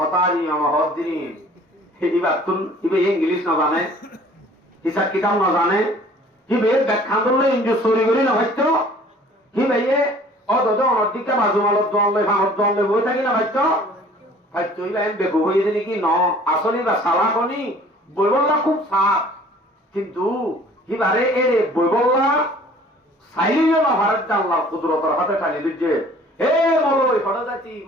অনর হদ দিন এবার তুন ইবে ইংলিশ না জানে হিসাব কিতাব না জানে হিবে ব্যাখ্যা করলে ইঞ্জু চুরি করি না ভাইতো হিবে অত অনর দিকে বাজু মালত দলে ভাঙত দলে বই থাকি না ভাইতো ভাইতো ইবা এম বেগু হয়ে দিলি কি ন আসলে বা সালাকনি বইবল্লা খুব সাপ কিন্তু হিবারে এরে বইবল্লা সাইলিও না ভারত আল্লাহ কুদরতের হাতে টানি দিচ্ছে হে মলই ফটো যাচ্ছি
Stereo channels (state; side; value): normal; both; correlation 0.51